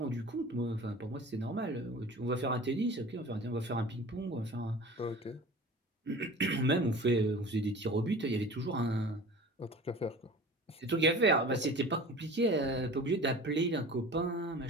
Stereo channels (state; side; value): normal; both; correlation 0.39